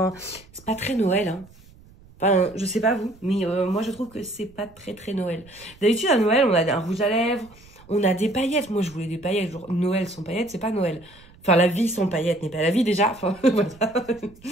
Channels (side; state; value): right; noise; rumble, 25 dB below the sound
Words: c'est pas très Noël, hein. Enfin, je sais pas vous, mais moi je trouve que c'est pas très Noël. D'habitude à Noël, on a un rouge à lèvres, on a des paillettes. Moi je voulais des paillettes, genre Noël sans paillettes, c'est pas Noël. Enfin, la vie sans paillettes n'est pas la vie déjà. Enfin, voilà.